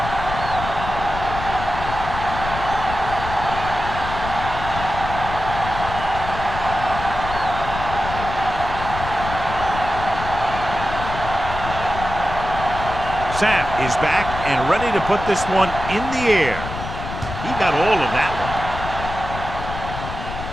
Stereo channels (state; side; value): noise; left; rumble, 7 dB below the sound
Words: Sapp is back and ready to put this one in the air. He got all of that one.